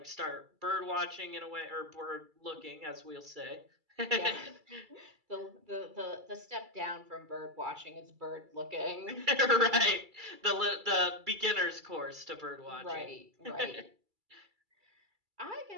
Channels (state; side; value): late; left; 2.3 ms